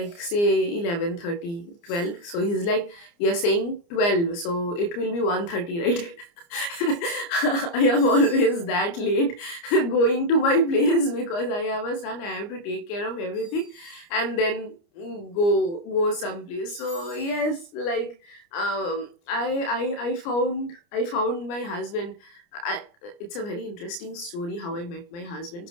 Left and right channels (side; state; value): right; late; 29 ms